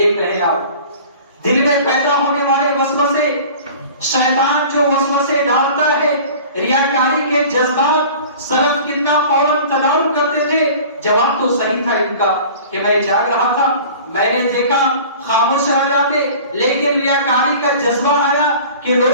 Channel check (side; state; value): both; inverted; correlation -0.43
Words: رہے ہیں آپ دل میں پیدا ہونے والے وسوسے، شیطان جو وسوسے ڈالتا ہے، ریاکاری کے جذبات، سلف کتنا فوراً تدارک کرتے تھے۔ جواب تو صحیح تھا ان کا کہ میں جاگ رہا تھا، میں نے دیکھا، خاموش رہ جاتے، لیکن ریاکاری کا جذبہ آیا کہ